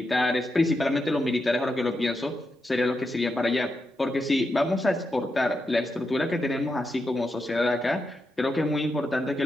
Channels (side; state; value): both; normal; correlation 0.86